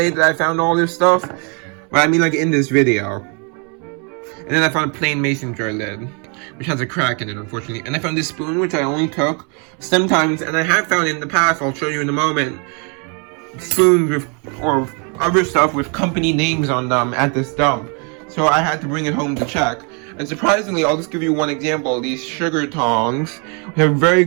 that I found all this stuff. But I mean, like, in this video. And then I found a plain mason jar lid, which has a crack in it, unfortunately. And I found this spoon, which I only took sometimes. And I have found in the past, I'll show you in a moment, spoons with, or other stuff with company names on them at this dump. So I had to bring it home to check. And surprisingly, I'll just give you one example. These sugar tongs have very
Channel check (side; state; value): left; quieter; 35.5 dB